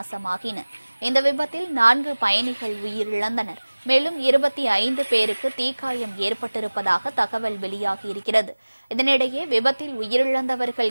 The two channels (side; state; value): both; inverted; correlation -1.00